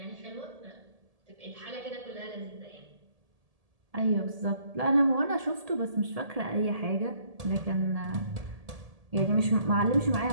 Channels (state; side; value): late; left; 1.7 ms